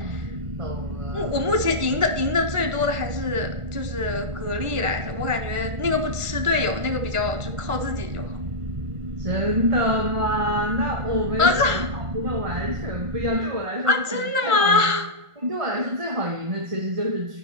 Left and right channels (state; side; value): late; left; 1.5 ms